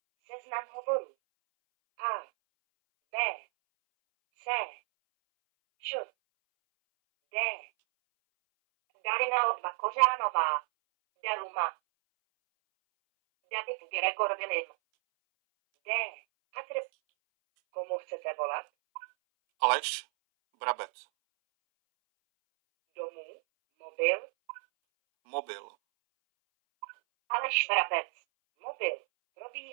Seznam hovorů. A. B. C. Č. D. Darina Odva Kořánová. Deluma. David Gregor Vilim. D. Komu chcete volat? Aleš Brabec. Domů? Mobil? Mobil. Aleš Vrabec. Mobil.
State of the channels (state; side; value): silent; left; 56 dB below the other